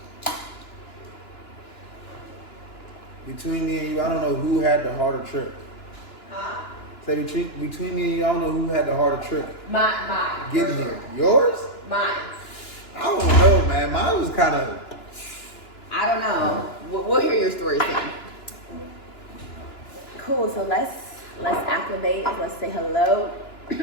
Between me and you, I don't know who had the harder trip. Huh? Say between me and you, I don't know who had the harder trip. Mine. Getting here. Yours? Mine. I don't know, man. Mine was kind of. I don't know. We'll hear your story soon. Cool. So let's acclimate. Let's say hello.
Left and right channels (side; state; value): right; late; 2.9 ms